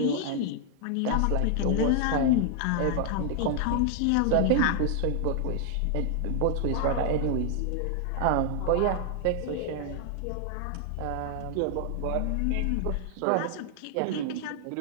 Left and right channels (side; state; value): both; different; correlation 0.00